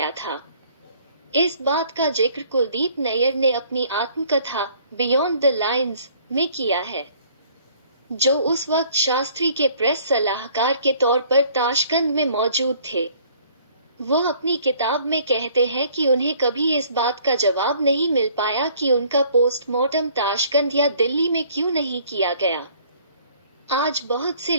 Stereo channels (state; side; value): inverted; both; correlation -0.58